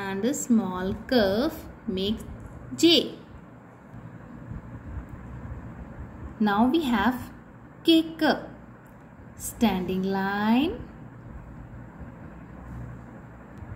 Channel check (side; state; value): both; identical; correlation 1.00